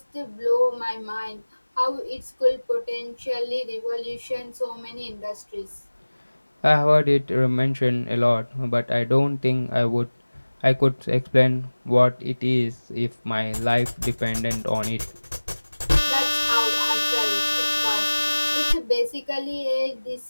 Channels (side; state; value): both; inverted; correlation -1.00